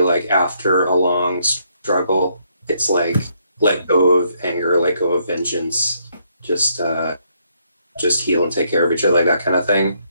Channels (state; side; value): inverted; both; correlation -0.73